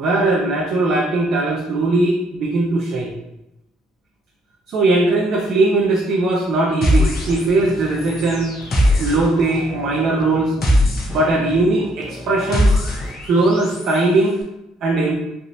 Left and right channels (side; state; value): both; normal; correlation 0.67